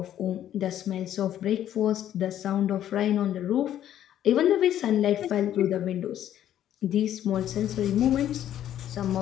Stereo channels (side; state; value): right; quieter; 11.3 dB